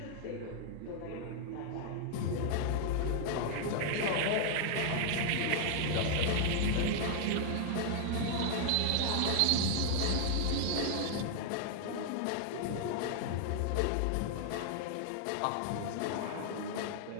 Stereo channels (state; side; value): different; both; correlation 0.00